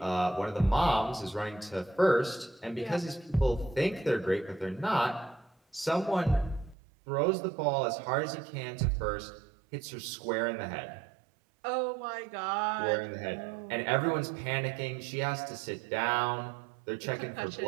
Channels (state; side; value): drops out; left; at 6.8 s